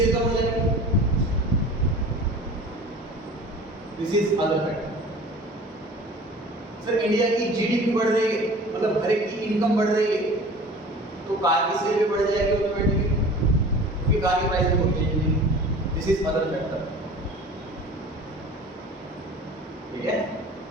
कम हो जाएगी। This is other factor. Sir India की जीडीपी बढ़ रही है, मतलब हर एक की इनकम बढ़ रही है, तो कार की सेल भी बढ़ जाएगी ऑटोमेटिकली, क्योंकि कार की प्राइस में कोई चेंज नहीं। This is other factor. ठीक है?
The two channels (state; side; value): normal; both; correlation 0.42